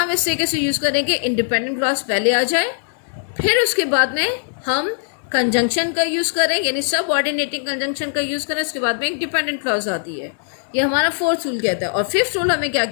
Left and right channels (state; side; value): silent; right; digital silence